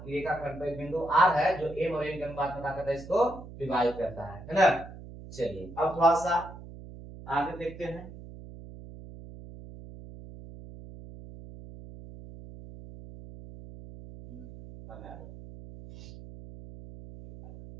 रेखाखंड पर बिंदु r है जो m और n के अनुपात में क्या करता है, इसको विभाजित करता है ना। चलिए अब थोड़ा सा आगे देखते हैं,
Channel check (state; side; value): noise; right; hum, 15 dB below the sound